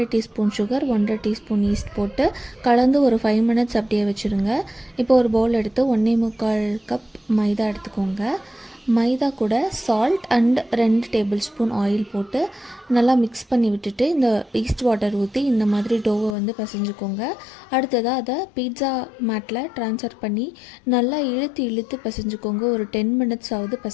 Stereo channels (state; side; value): drops out; right; at 16.4 s